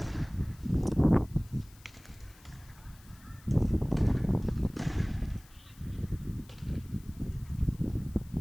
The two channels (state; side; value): noise; left; hiss, 25 dB below the sound